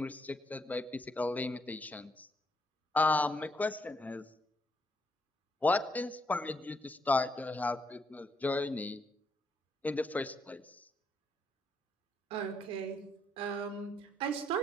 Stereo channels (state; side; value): normal; both; correlation 0.74